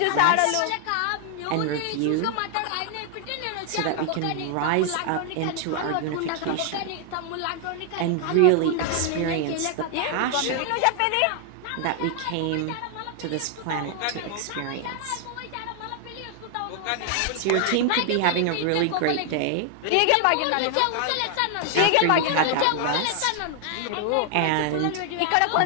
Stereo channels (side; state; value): both; different; correlation 0.00